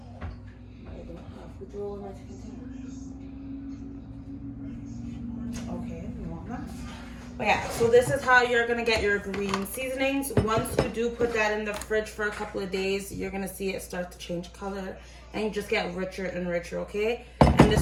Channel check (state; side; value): identical; both; correlation 1.00